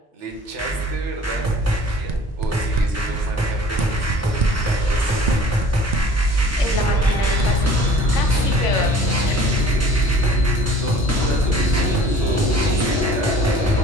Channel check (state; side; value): normal; both; correlation 0.49